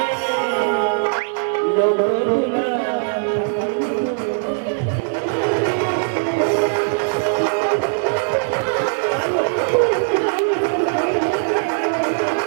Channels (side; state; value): left; silent; digital silence